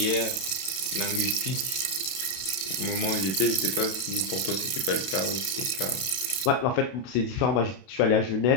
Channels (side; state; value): right; late; 31 ms